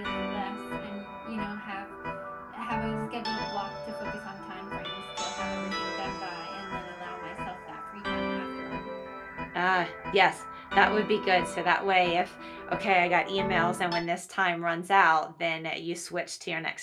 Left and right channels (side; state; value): both; identical; correlation 1.00